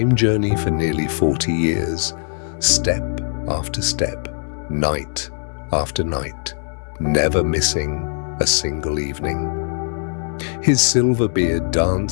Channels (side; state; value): right; silent; digital silence